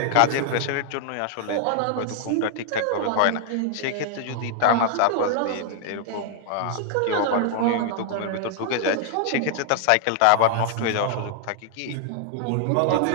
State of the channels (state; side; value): different; both; correlation 0.00